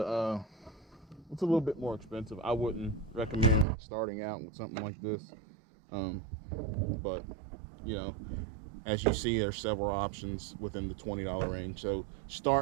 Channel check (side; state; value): left; drops out; at 3.7 s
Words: little bit more expensive. I wouldn't recommend starting out with something like this. But as you see, there's several options within the $20 range. So